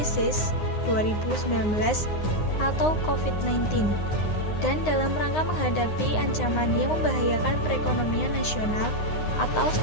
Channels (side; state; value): right; late; 9.7 ms